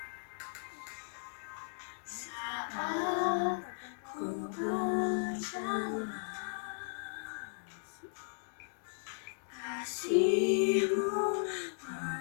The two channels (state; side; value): silent; right; digital silence